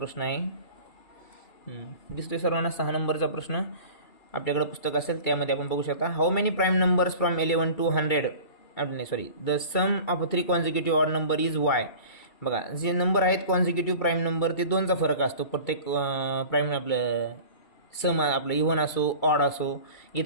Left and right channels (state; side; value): late; right; 2.3 ms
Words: आहे दिसतोय सर्वांना. 6 नंबरचा प्रश्न आपल्याकडे पुस्तक असेल त्यामध्ये आपण बघू शकता. How many prime numbers from 11 to 100 the sum of 3 consecutive odd number is Y. बघा जे नंबर आहेत कॉन्झिक्युटिव्ह प्राईम नंबर ते 2चा फरक असतो प्रत्येक प्राईम. आपलं सम आपलं इव्हन असो ऑड असो.